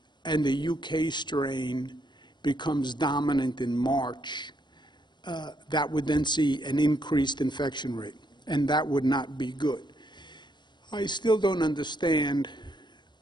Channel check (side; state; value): right; late; 0.21 ms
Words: and the UK strain becomes dominant in March, that would then see an increased infection rate, and that would not be good. I still don't understand